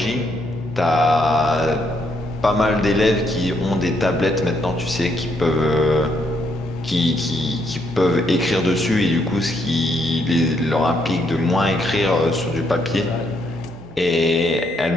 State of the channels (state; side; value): normal; both; correlation 0.74